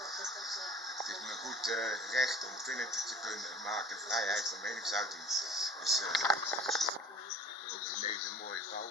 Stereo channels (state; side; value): normal; both; correlation 0.45